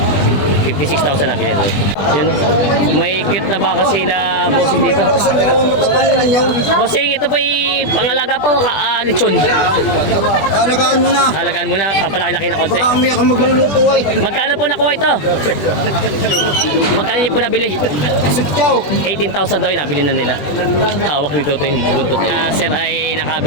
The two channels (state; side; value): late; right; 20 ms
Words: 56,000 nabili na doon. Yun. May cute na baka sila Bossing dito. Bossing, ito po yung pangalaga po, lechon. Alagaan mo na. Halagaan mo na, papalaki-laki na konti. Baka umiyak kang magluluto ay. Magkano po nakuha ito? Magkano niyo po nabili? Sutyaw. 18,000 daw yung nabili na nila. Hawak nito ito yung buntot. Sir ay